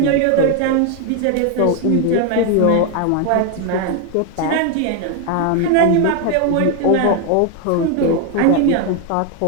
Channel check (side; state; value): both; different; correlation 0.01